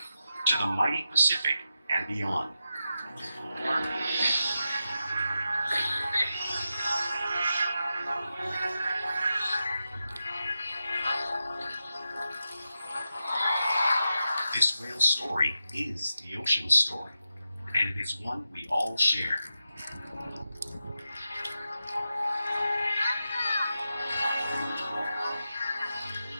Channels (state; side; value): inverted; both; correlation -0.89